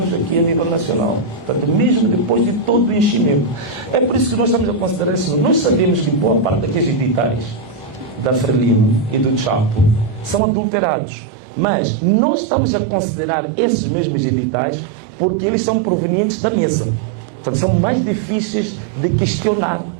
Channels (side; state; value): left; drops out; at 10.4 s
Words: aqui a nível nacional. Portanto, mesmo depois de todo o enchimento. É por isso que nós estamos a considerar isso. Nós sabemos que boa parte daqueles editais da Frelimo e do Chapo são adulterados. Mas nós estamos a considerar esses mesmos editais porque eles são provenientes da mesa. Portanto, são mais difíceis de questionar,